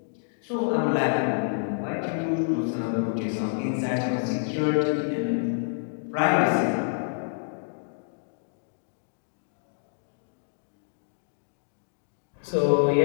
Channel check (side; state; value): right; silent; digital silence